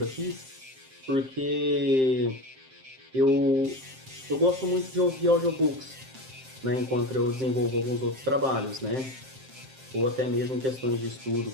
aqui, porque eu, eu gosto muito de ouvir audiobooks, né, enquanto eu desenvolvo alguns outros trabalhos, né, ou até mesmo em questões de estudo,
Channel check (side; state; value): left; late; 7.6 ms